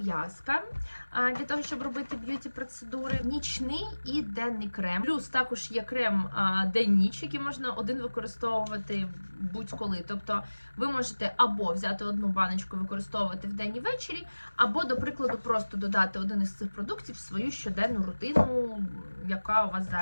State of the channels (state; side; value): inverted; both; correlation -1.00